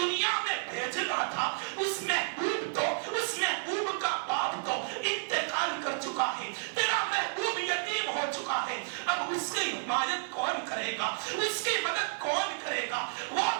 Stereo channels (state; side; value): silent; left; digital silence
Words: میں بھیجنا تھا اس محبوب کا باپ تو انتقال کر چکا ہے, تیرا محبوب یتیم ہو چکا ہے. اب اس کی حمایت کون کرے گا, اس کی مدد کون کرے گا, وہ